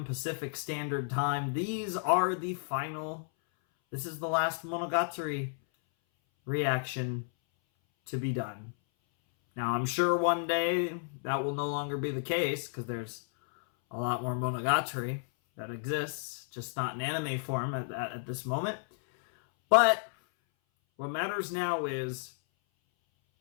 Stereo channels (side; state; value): right; silent; 56 dB below the other